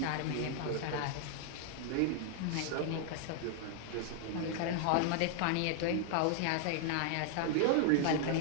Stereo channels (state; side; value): different; both; correlation 0.00